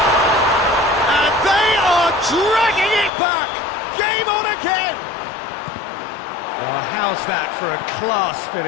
And they are dragging it back! Game on again! Well, how's that for a class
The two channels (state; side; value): drops out; right; at 3.1 s